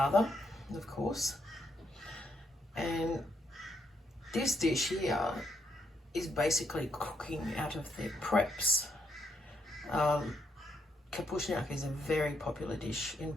of course. And this dish here is basically cooking out of their preps. Kapusniak is a very popular dish in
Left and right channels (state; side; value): normal; both; correlation 0.77